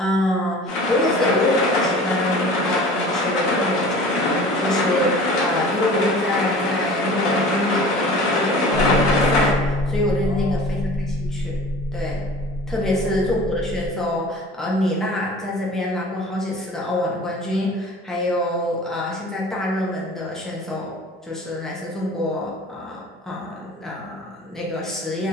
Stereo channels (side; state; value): both; normal; correlation 0.42